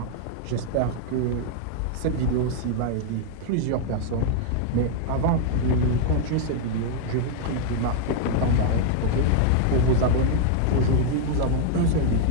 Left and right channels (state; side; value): different; both; correlation 0.00